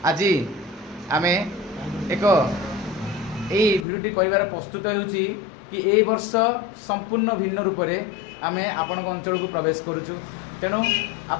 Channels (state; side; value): drops out; right; at 3.9 s